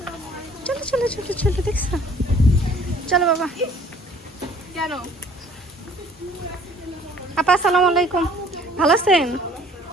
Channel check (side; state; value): both; normal; correlation 0.55